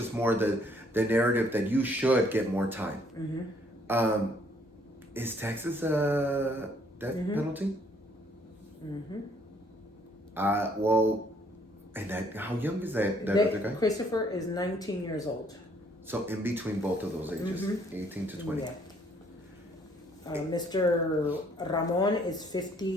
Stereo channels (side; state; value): both; normal; correlation 0.64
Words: more the narrative that you should get more time. Is Texas a death penalty? Well, and how young is that other guy? Christopher is 19 years old. So in between both of those ages, 18 to 20. Yeah. Mr. Ramon is